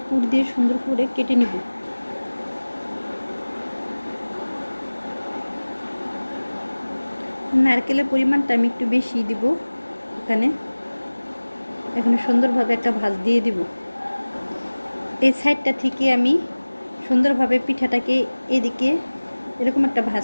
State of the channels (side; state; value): both; inverted; correlation -1.00